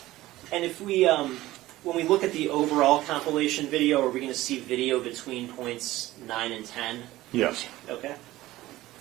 And if we, when we look at the overall compilation video, are we going to see video between points 9 and 10? Yes. Okay.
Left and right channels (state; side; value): quieter; left; 16.8 dB